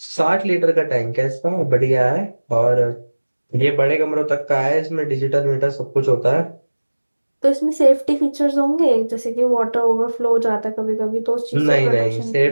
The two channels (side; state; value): both; inverted; correlation -1.00